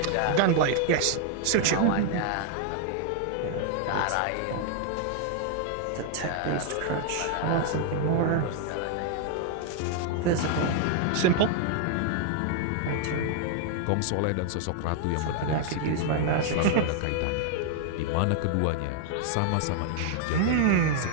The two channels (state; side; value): different; both; correlation 0.00